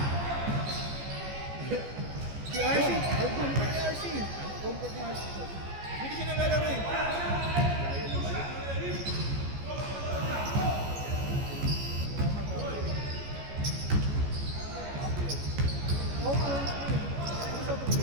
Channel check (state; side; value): late; left; 14 ms